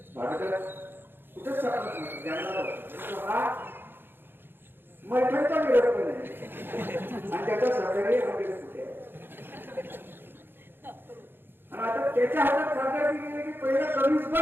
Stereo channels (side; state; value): left; late; 0.10 ms